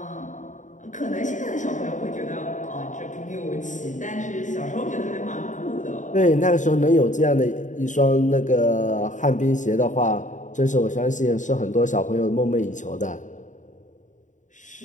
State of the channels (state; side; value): late; right; 0.36 ms